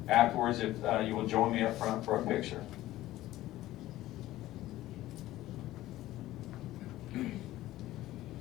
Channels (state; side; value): quieter; right; 15.6 dB